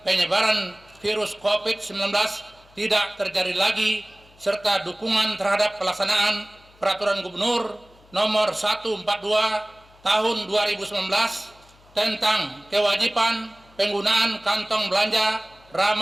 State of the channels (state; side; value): noise; left; hum, 28 dB below the sound